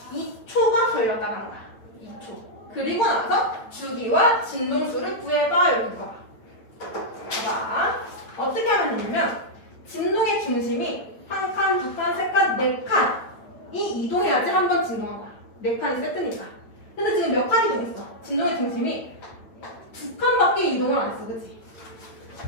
그리고 나서 주기와 진동수를 구해봐. 여기가. 봐. 어떻게 하면 되냐면 진동의 중심이 한 칸, 두 칸, 세 칸, 네 칸이 이동해야지 한 번 진동한 거야. 네 칸이 세트니까. 근데 지금 몇 칸 이동했어? 진동의 중심이 두 칸밖에 이동을 안 했어. 그치?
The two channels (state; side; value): late; right; 8.9 ms